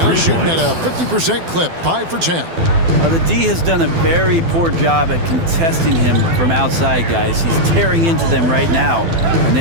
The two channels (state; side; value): late; left; 12 ms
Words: shooting at a 50% clip, 5 for 10. The D has done a very poor job at contesting him from outside, guys. He's tearing into them right now, and